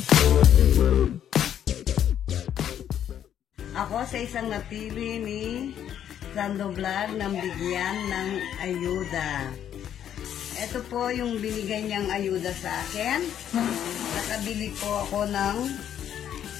Ako sa isang napili ni Sando Vlog ng bigyan ng ayuda. Ito po yung binigay niyang ayuda sa akin. Nakabili po ako ng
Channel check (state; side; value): quieter; right; 9.9 dB